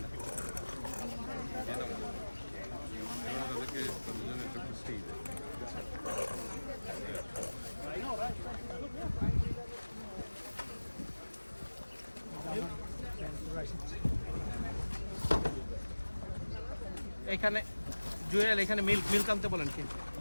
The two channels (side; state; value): both; inverted; correlation -1.00